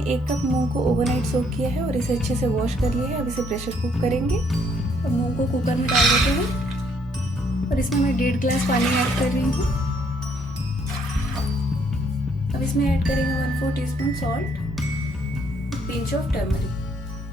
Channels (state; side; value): normal; both; correlation 0.68